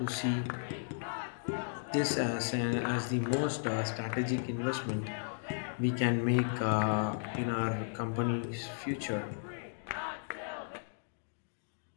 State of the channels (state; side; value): silent; right; digital silence